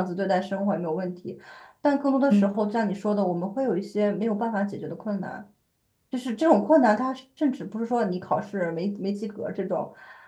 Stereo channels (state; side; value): identical; both; correlation 1.00